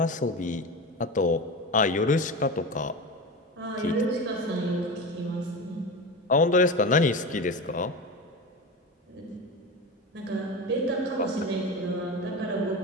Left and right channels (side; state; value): both; normal; correlation 0.25